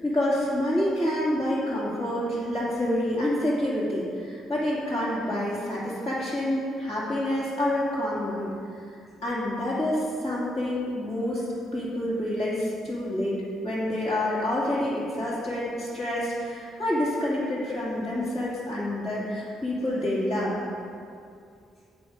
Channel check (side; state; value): both; normal; correlation 0.79